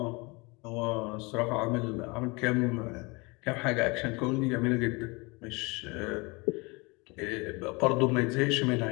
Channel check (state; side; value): quieter; right; 27.0 dB